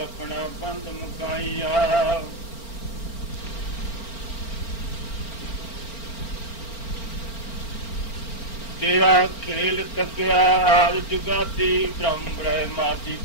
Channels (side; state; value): right; late; 4.4 ms